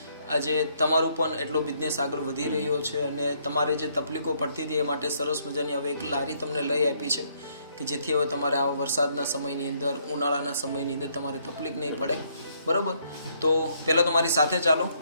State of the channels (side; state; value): both; inverted; correlation -0.70